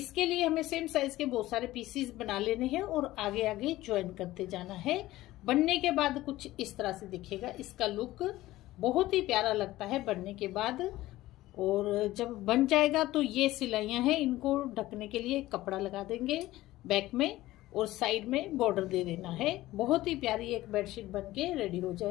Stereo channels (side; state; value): right; quieter; 16.6 dB